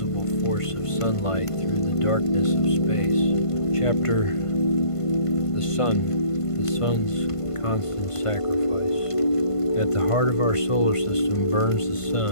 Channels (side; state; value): right; late; 1.5 ms